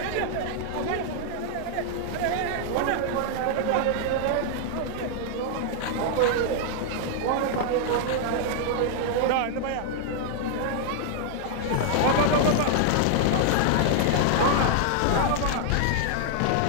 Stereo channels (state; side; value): different; both; correlation -0.01